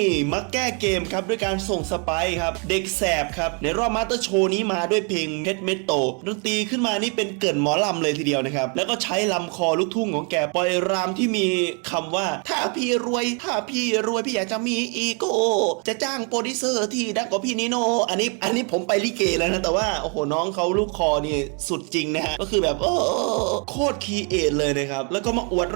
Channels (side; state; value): left; quieter; 36.6 dB